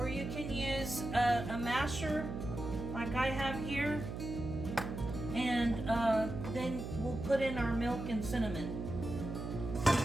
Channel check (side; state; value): right; noise; hum, 6 dB below the sound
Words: you can use a masher like I have here. And then we'll put in our milk and cinnamon.